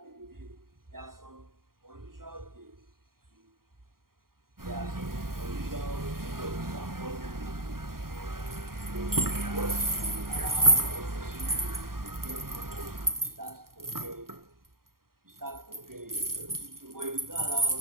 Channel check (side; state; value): left; late; 0.92 ms